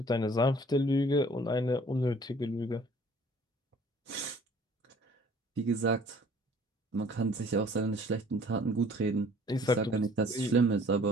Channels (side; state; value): both; normal; correlation 0.54